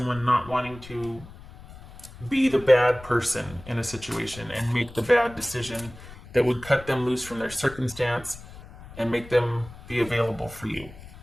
not wanting to be the bad person in a situation and make the bad decision that would cut them loose from their circumstance and make them be available for you.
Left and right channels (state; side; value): noise; left; rumble, 18 dB below the sound